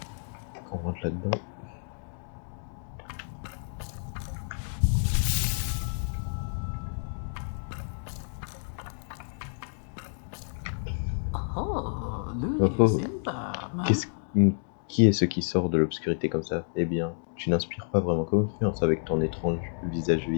On rentre là-dedans. Oh oh. Qui est ce qui sort de l'obscurité comme ça? Eh bien, tu n'inspires pas vraiment confiance avec ton étrange visage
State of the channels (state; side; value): silent; right; digital silence